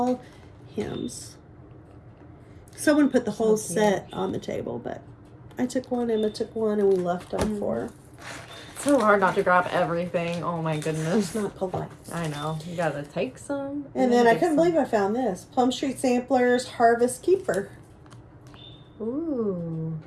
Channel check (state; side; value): identical; both; correlation 1.00